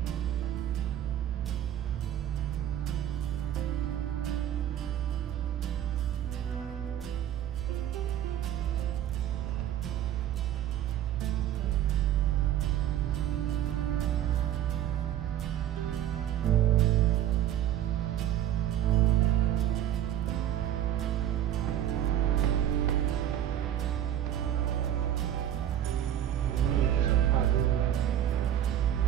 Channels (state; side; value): quieter; left; 11.2 dB